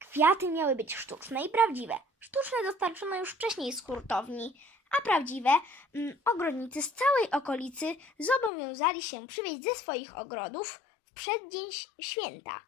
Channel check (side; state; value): right; drops out; at 8.5 s